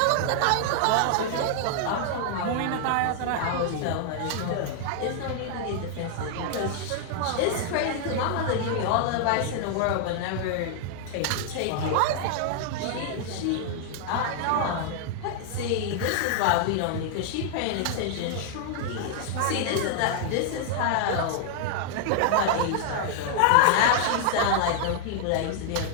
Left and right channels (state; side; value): different; both; correlation -0.01